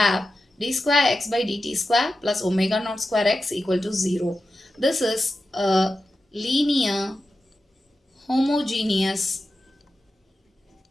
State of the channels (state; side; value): normal; both; correlation 0.92